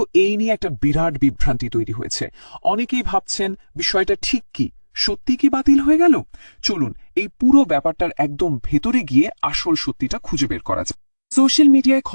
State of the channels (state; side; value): inverted; both; correlation -1.00